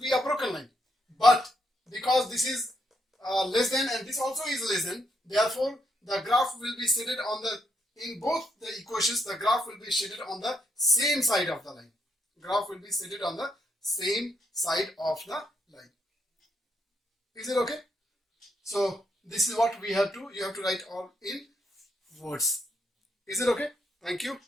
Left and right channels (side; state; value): both; normal; correlation 0.77